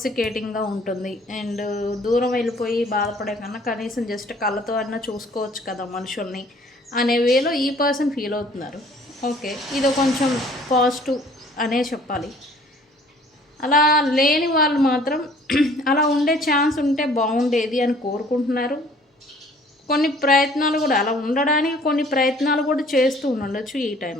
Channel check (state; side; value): normal; both; correlation 0.55